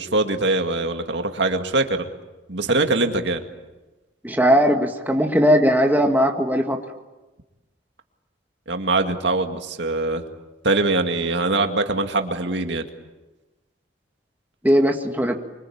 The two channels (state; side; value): normal; both; correlation 0.37